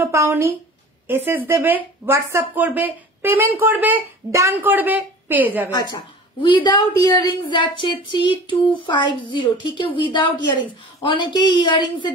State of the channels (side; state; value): both; normal; correlation 0.41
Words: পাওনি এসএস দেবে, হোয়াটসঅ্যাপ করবে, পেমেন্ট করবে, ডান করবে, পেয়ে যাবে। আচ্ছা উইদাউট ইয়াররিংস যাচ্ছে 3250, ঠিক আছে? উইদাউট ইয়াররিংস, অনেকেই ইয়াররিংস এর